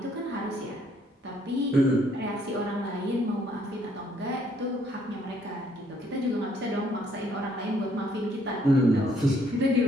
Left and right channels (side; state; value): both; normal; correlation 0.67